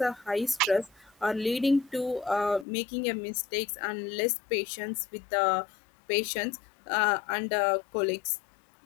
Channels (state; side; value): drops out; right; at 2.7 s